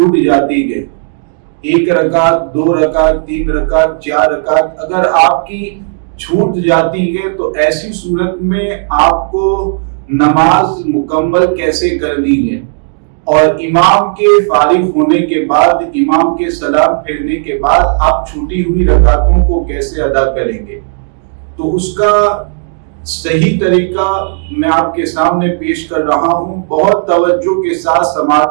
جاتی ہے، 1 رکعت، 2 رکعت، 3 رکعت، 4 رکعت اگر آپ کی چھوٹ جاتی ہے، تو ایسی صورت میں آپ کو نماز مکمل کیسے کرنی ہے، اور امام کے فارغ ہونے کے بعد، امام کے سلام پھیرنے کے بعد آپ چھوٹی ہوئی رکعتوں کو کیسے ادا کریں گے۔ تو اس کا صحیح طریقہ میں آپ کے سامنے پیش کر رہا ہوں۔ بہت توجہ کے ساتھ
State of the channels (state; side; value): silent; left; digital silence